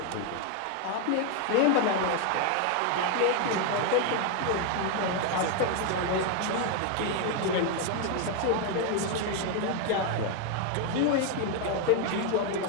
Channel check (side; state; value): both; different; correlation 0.01